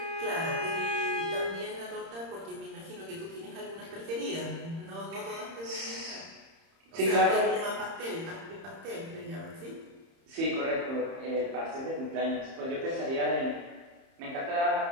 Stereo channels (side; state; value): left; late; 30 ms